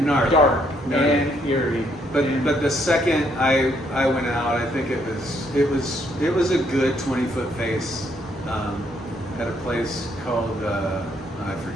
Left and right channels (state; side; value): normal; both; correlation 0.71